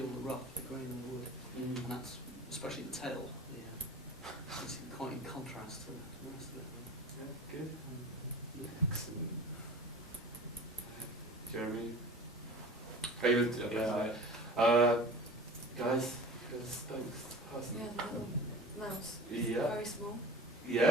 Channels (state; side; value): normal; both; correlation 0.38